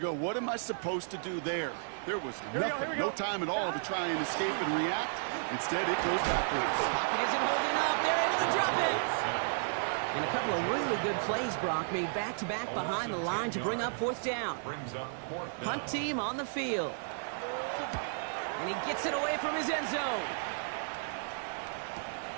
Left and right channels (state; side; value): silent; left; 56 dB below the other